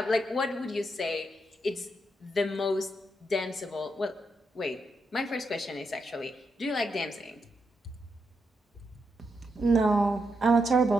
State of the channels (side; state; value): both; normal; correlation 0.82